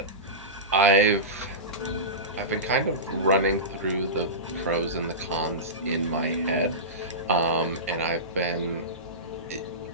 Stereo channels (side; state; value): both; normal; correlation -0.20